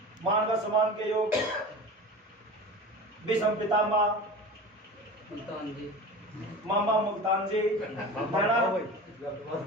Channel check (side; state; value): both; normal; correlation 0.34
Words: मानव सम्मान के योग विषम पितामह मुल्तान जी, मामा मुल्तान जी,